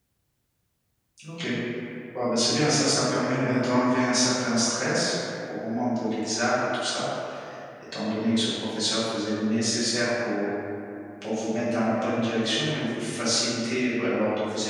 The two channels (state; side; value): identical; both; correlation 1.00